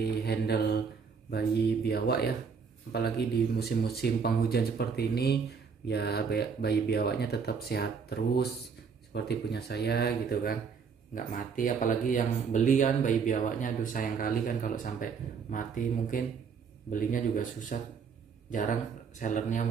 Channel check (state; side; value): quieter; left; 5.9 dB